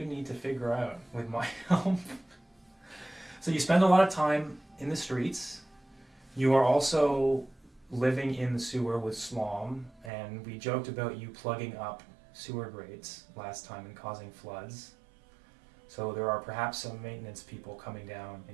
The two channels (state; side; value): drops out; left; at 10.1 s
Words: need to figure out with my help. So you spend a lot of time in the streets. You are also living in the sewer with Slom, and we joked about you plugging up sewer grates last time and causing floods. So there are perhaps some maintenance people coming down